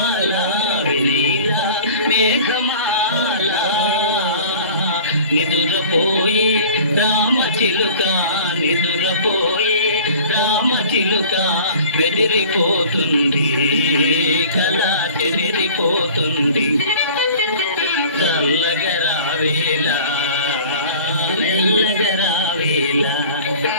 వెనీలా మేఘమాల, నిదురపోయి రామచిలుక నిదురపోయి రామచిలుక, బెదిరిపోతుంది కళ చెదిరిపోతుంది, చల్లగా రావేలా మెల్లగా రావేలా.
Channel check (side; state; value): both; inverted; correlation -0.45